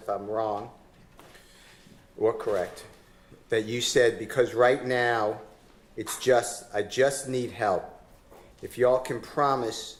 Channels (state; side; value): identical; both; correlation 1.00